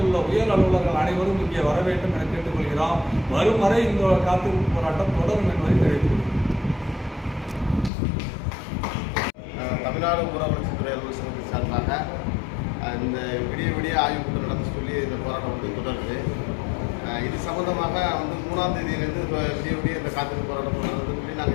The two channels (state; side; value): drops out; right; at 7.9 s